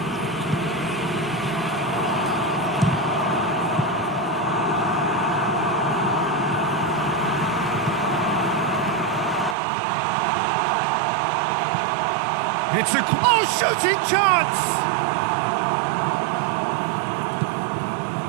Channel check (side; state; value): left; drops out; at 9.6 s